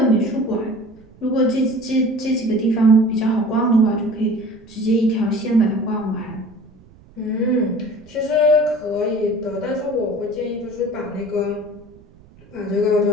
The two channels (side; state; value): right; noise; rumble, 25 dB below the sound